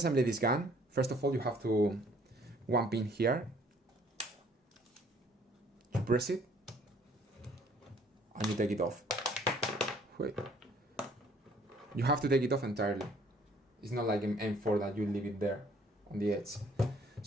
this gun, first of all you have to one pin here. You press it and you take it off. Wait. You have to take it off entirely. It's not like in M4 that you leave it there on the edge.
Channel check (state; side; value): normal; both; correlation 0.60